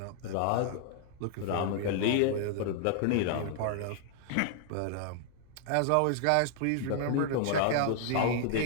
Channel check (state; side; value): different; both; correlation 0.00